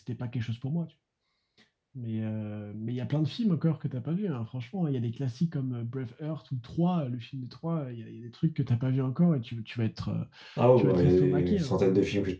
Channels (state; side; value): identical; both; correlation 1.00